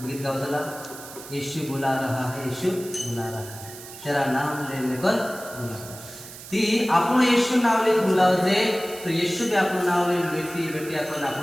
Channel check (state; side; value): noise; right; hiss, 15 dB below the sound